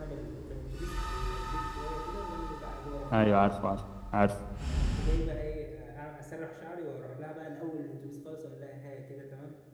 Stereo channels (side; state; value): both; identical; correlation 1.00